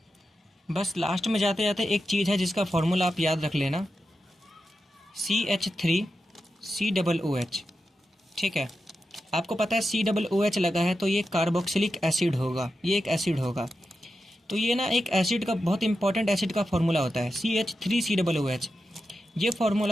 बस लास्ट में जाते जाते एक चीज़ है जिसका फॉर्मूला आप याद रख लेना, CH3COOH। ठीक है, आपको पता है COOH लगा है तो ये कार्बोक्सिलिक एसिड होगा, ये एक एसिड होगा। तो ये ना एक एसिड का बहुत इंपॉर्टेंट एसिड का फॉर्मूला होता है CH3COOH। ये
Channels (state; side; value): normal; both; correlation 0.90